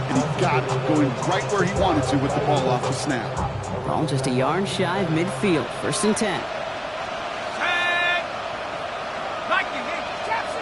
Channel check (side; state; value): both; identical; correlation 1.00